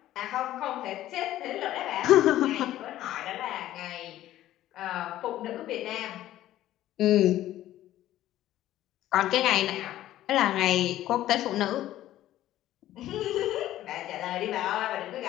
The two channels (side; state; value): right; quieter; 13.8 dB